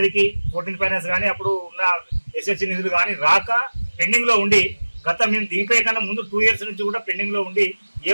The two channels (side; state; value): both; inverted; correlation -1.00